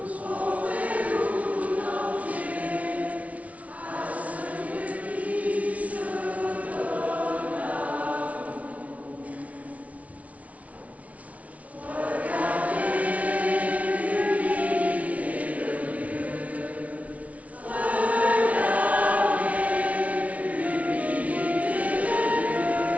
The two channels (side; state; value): left; late; 0.067 ms